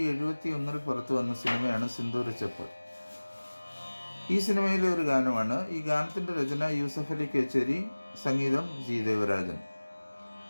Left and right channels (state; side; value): inverted; both; correlation -1.00